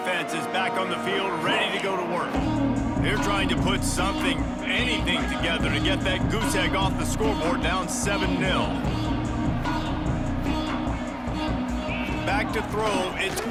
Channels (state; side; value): identical; both; correlation 1.00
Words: is back on the field, ready to go to work. They're trying to put anything together to get that goose egg off the scoreboard down 7-0. Back to throw, it's